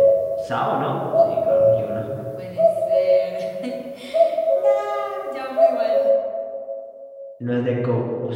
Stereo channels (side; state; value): both; identical; correlation 1.00